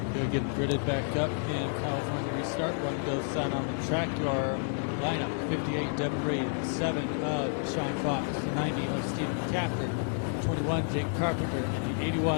He'll get gridded back up in California restart. One goes sign on the track. Your lineup: 58 Devin Reed, 7 of Sean Fox, the 90 of Stephen Capter, 21 Jake Carpenter, and the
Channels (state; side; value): silent; right; 58 dB below the other